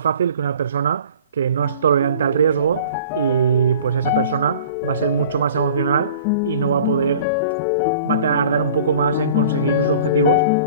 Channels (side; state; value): both; inverted; correlation -0.45